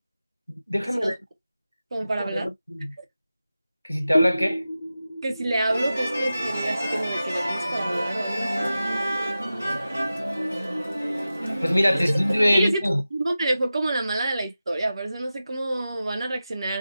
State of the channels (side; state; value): both; inverted; correlation -0.94